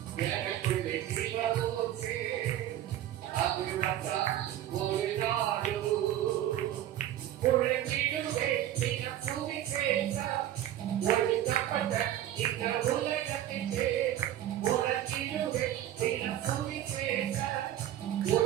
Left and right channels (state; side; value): quieter; left; 12.4 dB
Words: எனக்குள்ளே சிவபூசே அது வச்சா ஓடினாலு உழைத்திடுவே தினம் சுவிசேஷ ஒழிக்கப்பட்ட இந்த உலகத்திலே உழைத்திடுவே தினம் சுவிசேஷ